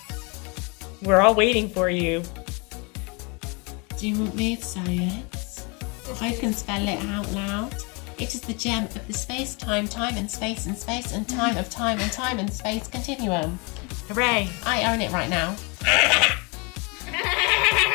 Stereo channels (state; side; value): quieter; right; 30.7 dB